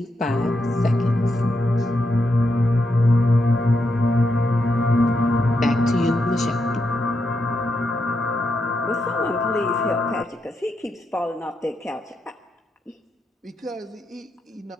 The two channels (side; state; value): both; normal; correlation 0.83